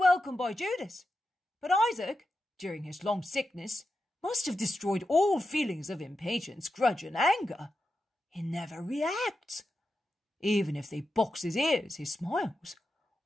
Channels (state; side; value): normal; both; correlation 0.89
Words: by Judas. But Isaac, during his long sickness, must have destroyed all feelings of impatience, grudge, and anger. He never reacts. Even if they box his ears, he smiles.